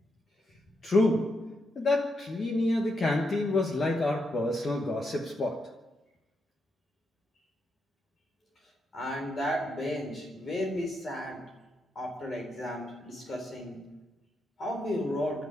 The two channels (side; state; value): both; normal; correlation 0.82